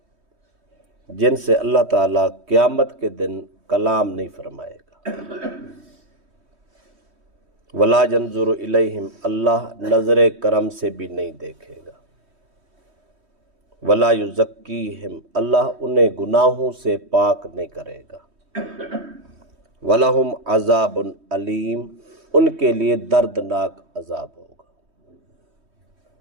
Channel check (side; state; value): left; late; 3.1 ms